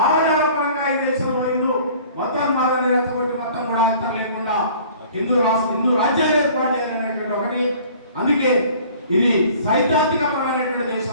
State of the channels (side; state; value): both; inverted; correlation -0.50